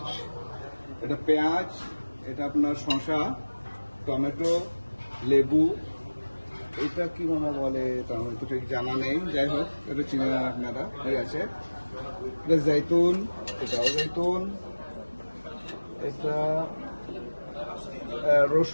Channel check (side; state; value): both; inverted; correlation -1.00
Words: এটা পেঁয়াজ, এটা আপনার শসা, টমেটো, লেবু, এটা কি মামা বলে তা আমার তো ঠিক জানা নেই, যাই হোক এটা চিনে না আপনারা কি আছে। এটা জৈতুন, এটাও জৈতুন, এটা